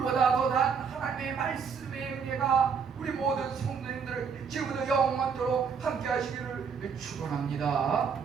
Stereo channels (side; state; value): left; quieter; 6.2 dB